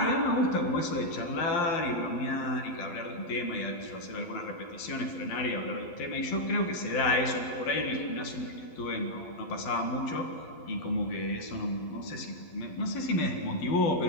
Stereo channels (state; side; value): late; right; 12 ms